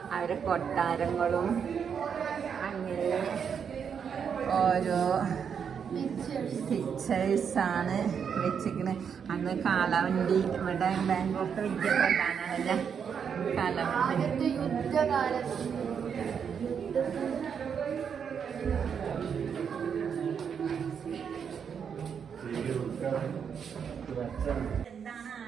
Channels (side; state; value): left; quieter; 7.2 dB